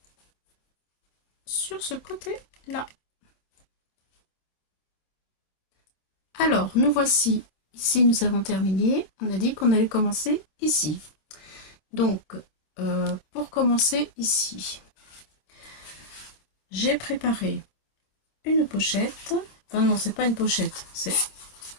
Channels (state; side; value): late; right; 27 ms